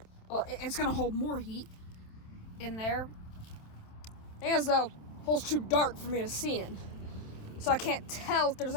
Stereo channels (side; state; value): right; late; 27 ms